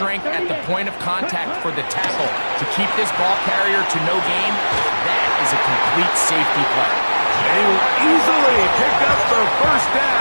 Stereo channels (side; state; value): both; inverted; correlation -1.00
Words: at the point of contact for the tackle to keep this ball carrier to no gain. That is a complete safety play. They will easily pick up the first